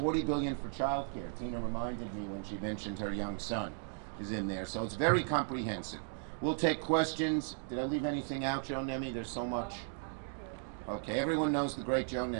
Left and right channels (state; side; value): silent; left; 54 dB below the other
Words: billion for childcare. Tina reminded me when she mentioned her young son is in there, so it's very comprehensive. We'll take questions. Did I leave anything out, Joe Nemi? There's so much. Okay, everyone knows the great Joe